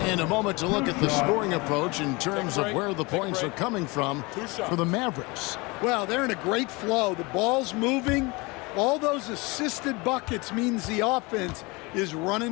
In a moment to look at the scoring approach in terms of where the points are coming from for the Mavericks. Well, they're in a great flow. The ball's moving. All those assisted buckets means the offense is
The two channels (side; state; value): right; quieter; 25.6 dB